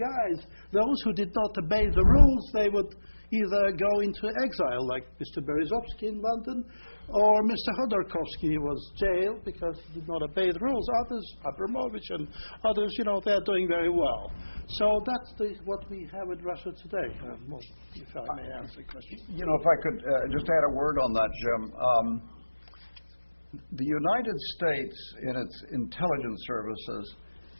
Those who did not obey the rules, they would either go into exile, like Mr. Berezovsky in London, or Mr. Khodorkovsky was jailed because he did not obey the rules. Others, Abramovich and others, they're doing very well. So that's what we have in Russia today. If I may answer the question. If I could just add a word on that, Jim. The United States, in its intelligence services,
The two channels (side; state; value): both; inverted; correlation -1.00